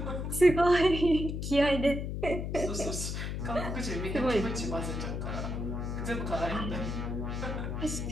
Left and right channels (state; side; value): noise; left; hum, 3 dB below the sound